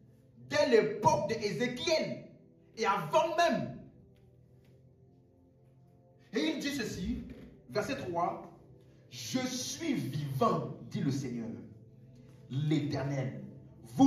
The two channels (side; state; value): both; identical; correlation 1.00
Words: Dès l'époque d'Ézéchiel. Et avant même. Et il dit ceci, verset 3. Je suis vivant, dit le Seigneur, l'Éternel.